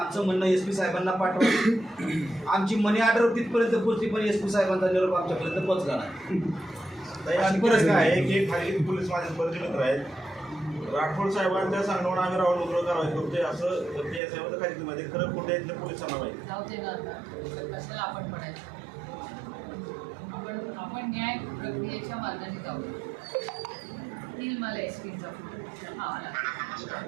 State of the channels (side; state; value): left; drops out; at 14.2 s